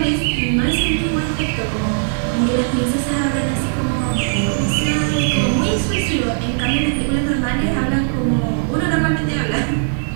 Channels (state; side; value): silent; left; 59 dB below the other